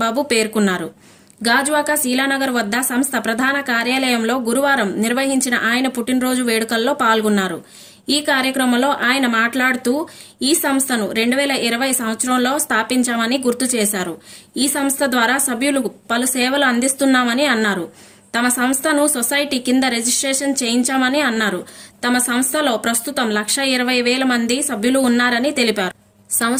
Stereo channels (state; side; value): identical; both; correlation 1.00